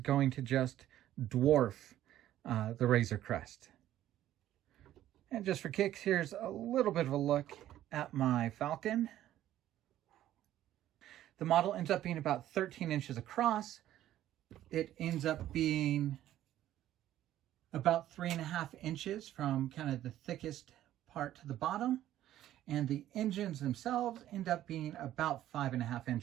to just dwarf the Razor Crest. And just for kicks, here's a little bit of a look at my Falcon. The model ends up being about 13 inches across. It ends up being about 3.5 inches from kind of the thickest part to the bottom. And the engines themselves end up being about 5.5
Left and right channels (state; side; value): quieter; left; 12.9 dB